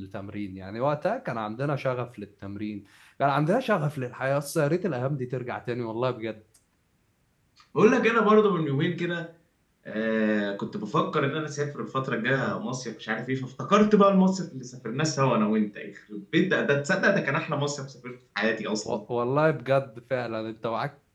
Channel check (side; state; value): both; identical; correlation 1.00